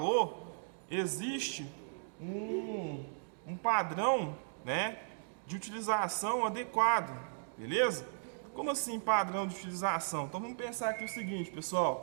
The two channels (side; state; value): left; silent; digital silence